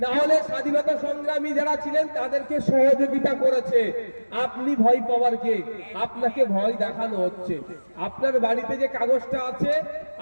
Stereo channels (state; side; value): inverted; both; correlation -1.00